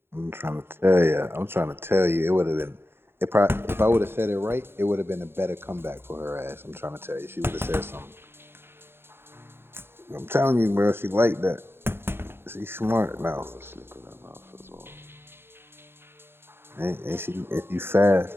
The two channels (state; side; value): late; left; 0.11 ms